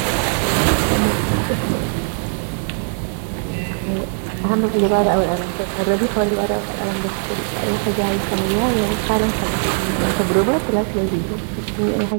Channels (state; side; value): silent; left; 66 dB below the other